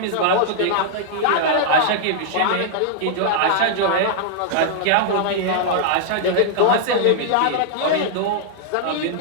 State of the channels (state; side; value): different; both; correlation -0.01